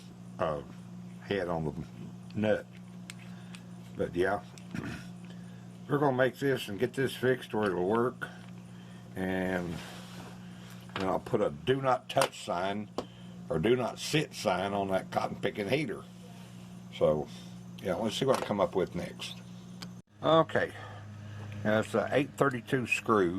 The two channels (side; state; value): both; identical; correlation 1.00